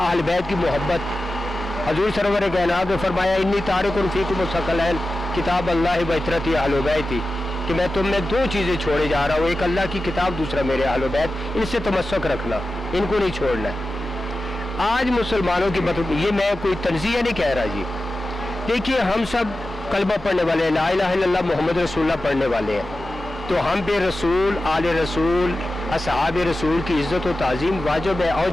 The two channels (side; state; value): both; normal; correlation 0.93